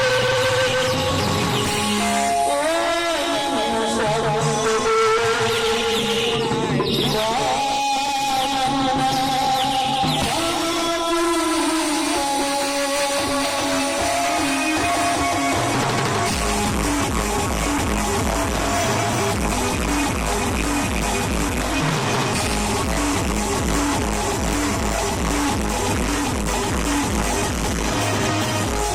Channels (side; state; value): both; identical; correlation 1.00